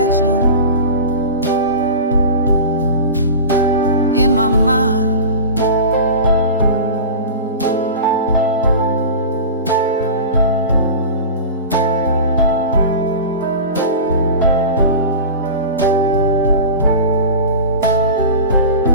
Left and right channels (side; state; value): both; inverted; correlation -0.31